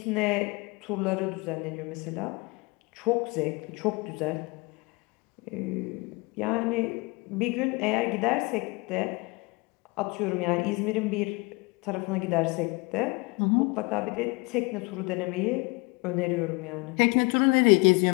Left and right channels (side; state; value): right; quieter; 26.9 dB